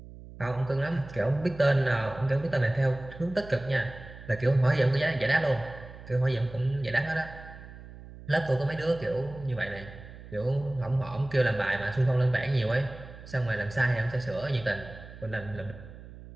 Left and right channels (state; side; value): noise; right; hum, 16 dB below the sound